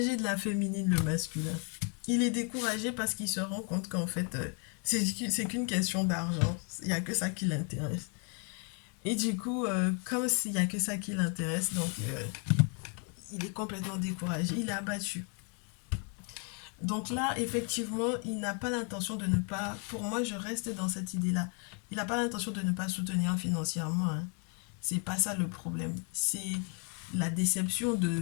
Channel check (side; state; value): right; quieter; 38.7 dB